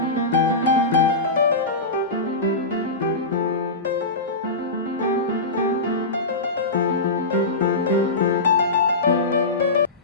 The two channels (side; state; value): right; quieter; 3.1 dB